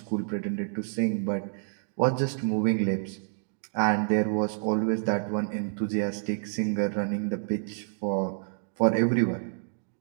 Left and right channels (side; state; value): left; silent; digital silence